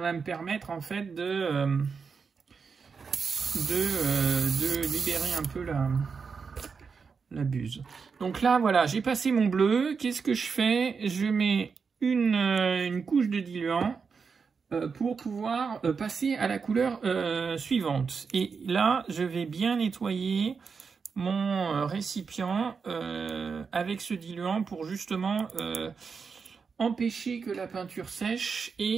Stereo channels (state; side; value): quieter; left; 5.5 dB